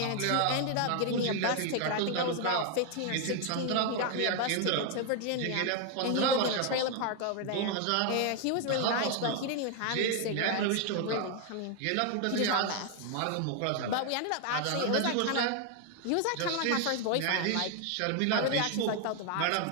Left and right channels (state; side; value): different; both; correlation 0.01